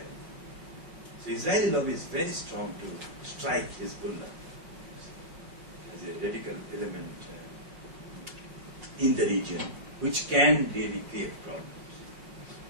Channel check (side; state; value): left; late; 5.5 ms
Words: So Israeli lobby is very strong to strike Hezbollah as a radical element in the region, which can really create problems.